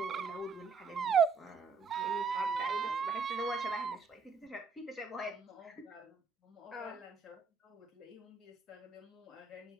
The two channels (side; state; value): left; quieter; 5.1 dB